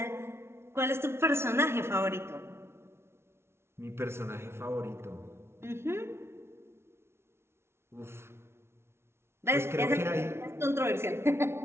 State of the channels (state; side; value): late; left; 0.12 ms